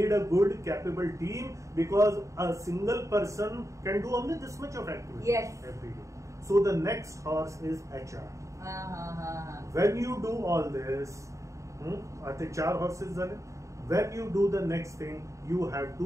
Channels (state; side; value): late; left; 0.15 ms